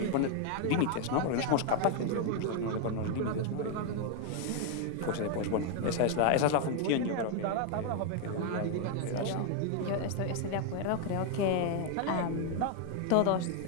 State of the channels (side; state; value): both; different; correlation 0.00